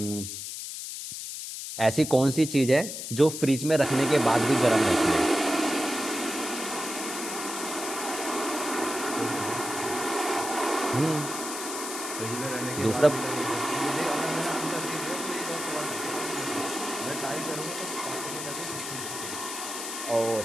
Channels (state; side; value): noise; left; hiss, 7 dB below the sound